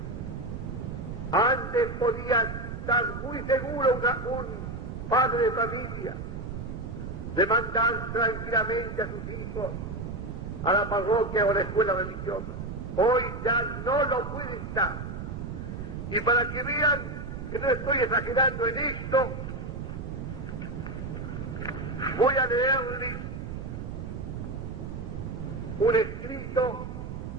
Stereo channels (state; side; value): noise; right; rumble, 7 dB below the sound